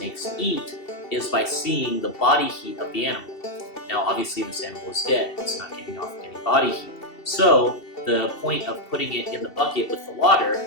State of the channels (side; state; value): right; late; 2.7 ms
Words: eat is by seeing the body heat of the animal. Now obviously this animal is dead, it's not giving off any body heat. So the point of putting it in the bucket with the water,